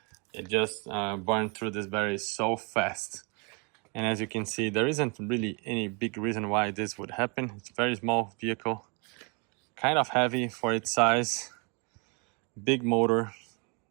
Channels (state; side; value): quieter; left; 33.2 dB